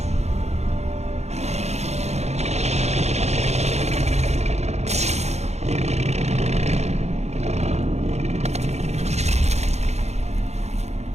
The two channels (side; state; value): left; late; 0.32 ms